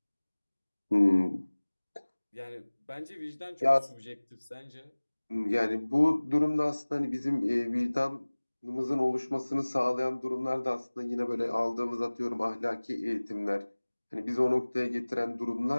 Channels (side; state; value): both; inverted; correlation -1.00